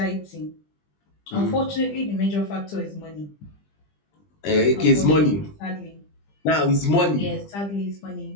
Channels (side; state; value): right; late; 20 ms